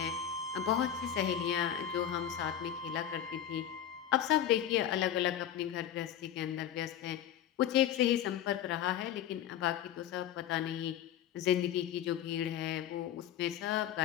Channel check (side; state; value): right; quieter; 10.4 dB